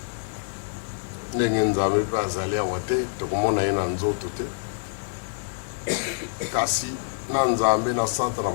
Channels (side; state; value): right; silent; digital silence